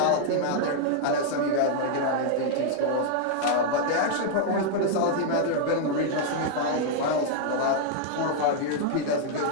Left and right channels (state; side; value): different; both; correlation -0.01